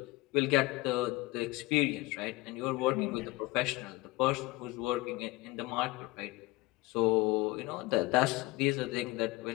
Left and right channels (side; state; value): right; quieter; 21.4 dB